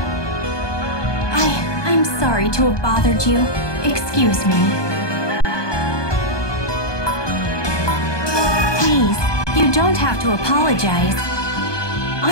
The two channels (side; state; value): right; late; 1.2 ms